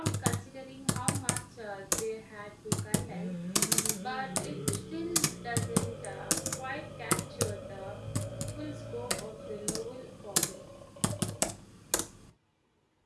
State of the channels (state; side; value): identical; both; correlation 1.00